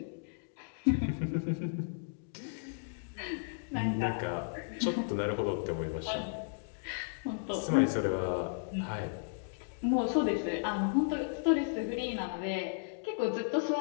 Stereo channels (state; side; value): silent; right; digital silence